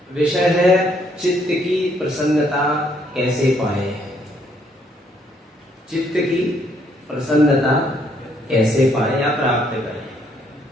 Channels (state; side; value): normal; both; correlation 0.69